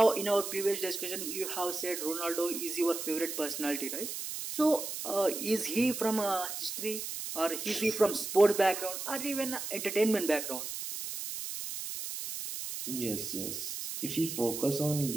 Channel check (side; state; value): right; noise; hiss, 6 dB below the sound